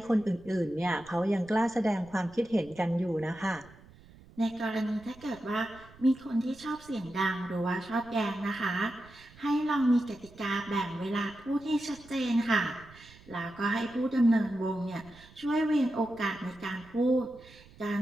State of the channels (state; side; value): noise; right; rumble, 23 dB below the sound